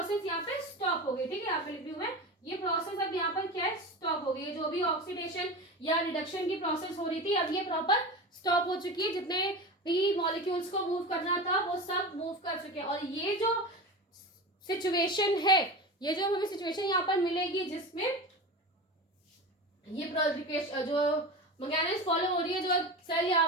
यहाँ पे स्टॉप हो गई, ठीक है, यहाँ पे लिख रही हूं मैं, ये प्रोसेस अब यहाँ पर क्या है, स्टॉप हो गई, जो भी ऑक्सीडेशन या रिडक्शन की प्रोसेस हो रही थी अब ये प्रॉपर स्टॉप हो चुकी है, जितने भी मॉलिक्यूल्स को मूव करना था वो सब मूव कर चुके हैं, और ये जो सिचुएशन है, ये जो हमें सिचुएशन यहाँ पर मिलेगी जिसमें ये जो मैकेनिज्म फॉलो हो रही है, जो सेल यहाँ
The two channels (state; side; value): normal; both; correlation 0.27